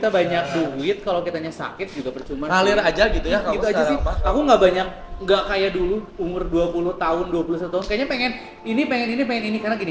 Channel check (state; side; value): identical; both; correlation 1.00